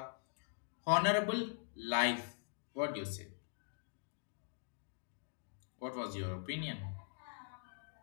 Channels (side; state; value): right; silent; digital silence